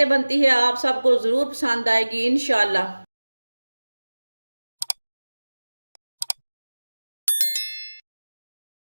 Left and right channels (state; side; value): inverted; both; correlation -1.00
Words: बनती है, आप सबको ज़रूर पसंद आएगी इंशाल्लाह।